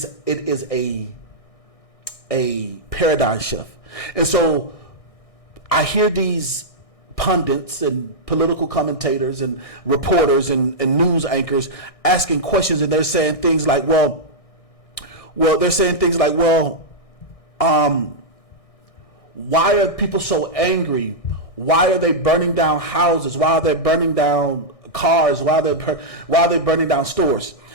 is a paradigm shift. And so I hear these pundits and political commentators and reporters and news anchors asking questions, and they're saying things like, well, why are people so angry? Why are they burning down houses? Why are they burning down cars? Why are they burning down stores?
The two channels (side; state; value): right; late; 1.6 ms